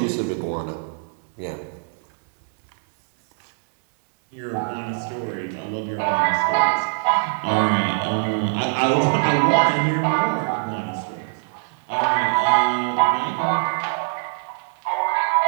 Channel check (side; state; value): left; silent; 64 dB below the other